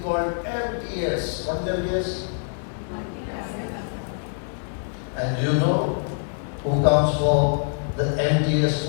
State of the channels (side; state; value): right; silent; 62 dB below the other